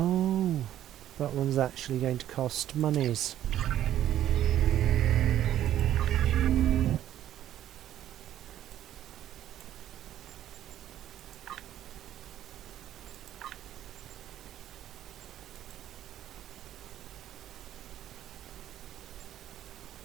that one's actually going to cost monies.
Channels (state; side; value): quieter; left; 11.9 dB